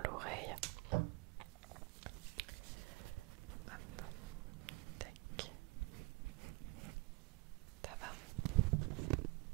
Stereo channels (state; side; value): quieter; left; 25.8 dB